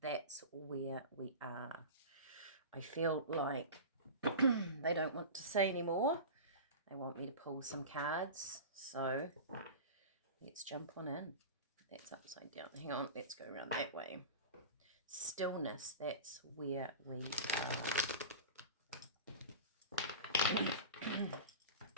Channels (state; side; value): inverted; both; correlation -0.31